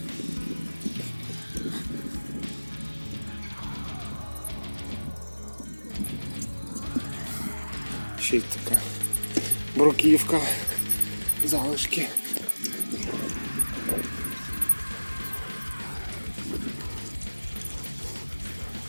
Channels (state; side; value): inverted; both; correlation -1.00